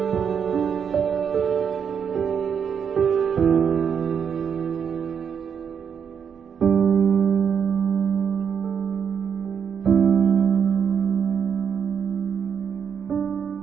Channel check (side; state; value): left; quieter; 7.3 dB